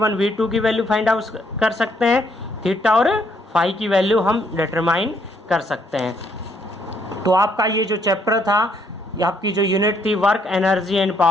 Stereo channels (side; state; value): both; normal; correlation 0.70